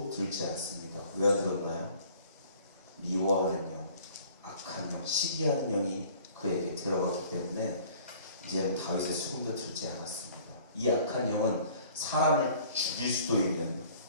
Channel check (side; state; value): both; inverted; correlation -0.52